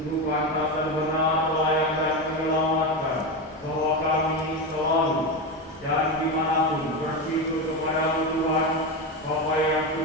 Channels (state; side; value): normal; both; correlation 0.16